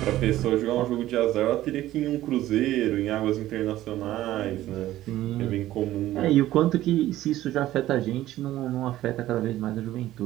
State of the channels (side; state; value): left; quieter; 14.6 dB